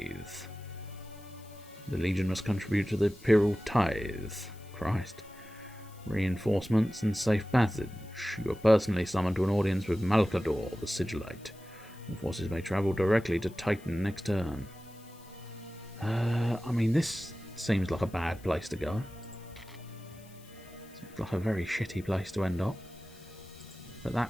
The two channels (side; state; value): left; noise; hiss, 24 dB below the sound